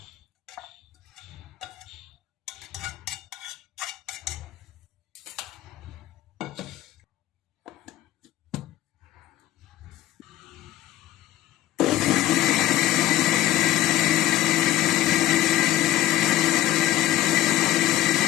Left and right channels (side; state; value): right; quieter; 14.1 dB